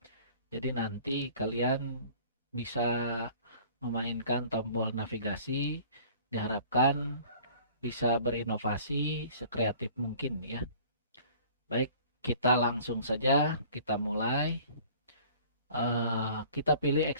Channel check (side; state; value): both; inverted; correlation -0.49